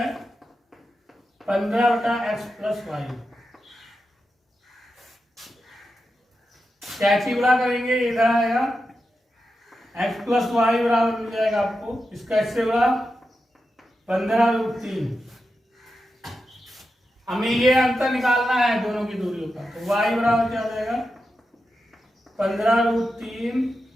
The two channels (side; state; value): both; normal; correlation 0.89